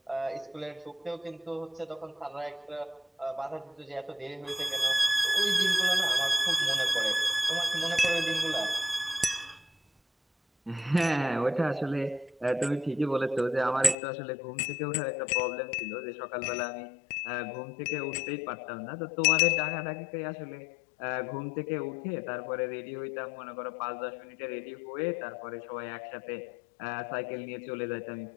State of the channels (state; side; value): drops out; right; at 14.0 s